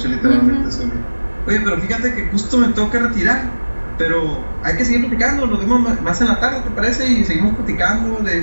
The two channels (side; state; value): both; inverted; correlation -1.00